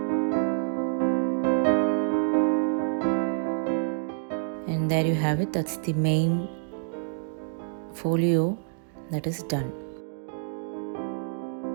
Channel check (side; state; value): left; silent; digital silence